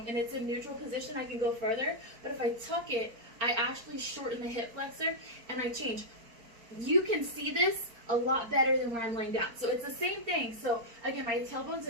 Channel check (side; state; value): left; late; 4.4 ms